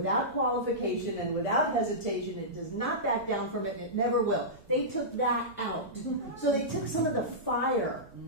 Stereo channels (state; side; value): normal; both; correlation -0.16